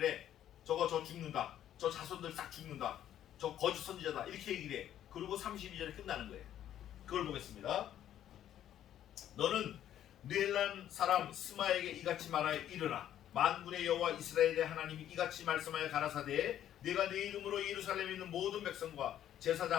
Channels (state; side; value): quieter; right; 11.2 dB